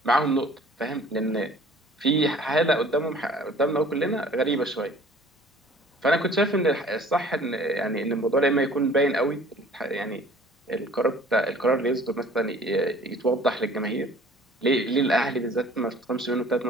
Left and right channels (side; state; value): both; normal; correlation 0.51